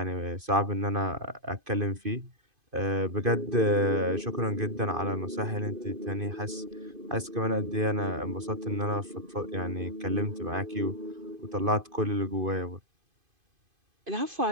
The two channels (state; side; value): late; left; 2.5 ms